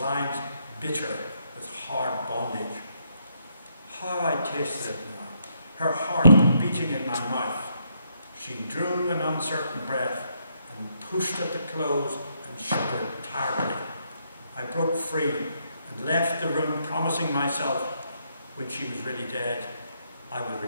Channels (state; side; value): inverted; both; correlation -0.75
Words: bitter with hard bondage. How I tasted it now, her heart beating in my mouth. She drew an uncertain breath and pushed at the clothes and shuddered tiredly. I broke free and left the room, promising myself, when she was really dead, I would